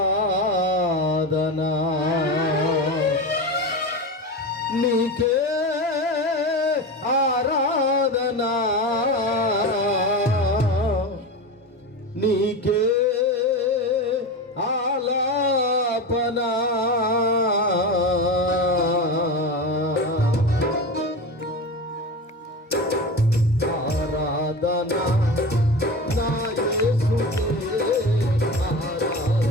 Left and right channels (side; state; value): both; normal; correlation 0.25